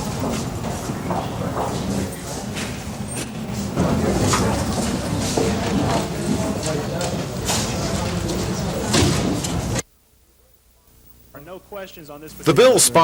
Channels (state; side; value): identical; both; correlation 1.00